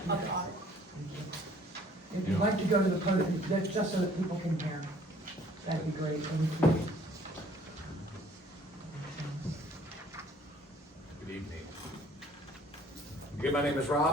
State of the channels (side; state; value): both; normal; correlation 0.56